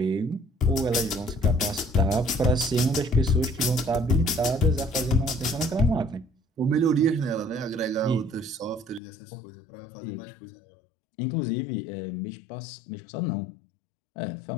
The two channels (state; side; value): drops out; right; at 9.0 s